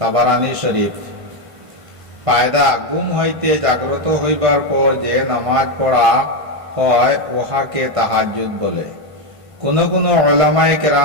শরীফ। ফায়দা: ঘুম হইতে জাগ্রত হইবার পর যে নামাজ পড়া হয় উহাকে তাহাজ্জুদ বলে। কোন কোন উলামায়ে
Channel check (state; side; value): late; left; 1.5 ms